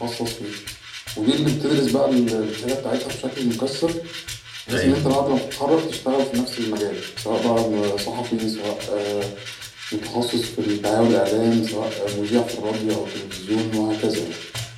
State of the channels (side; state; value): both; identical; correlation 1.00